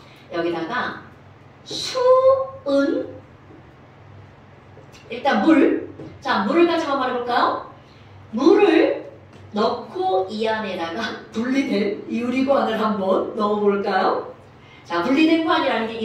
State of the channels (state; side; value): identical; both; correlation 1.00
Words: 여기다가 수은 일단 물. 자, 물을 가지고 말해볼까요? 물을 넣고 이 안에다가 분리된 유리관을 한번 넣어볼까요? 자, 분리된 관이라는 게